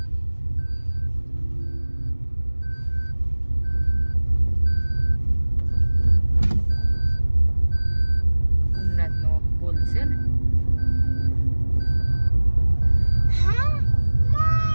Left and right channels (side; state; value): both; inverted; correlation -1.00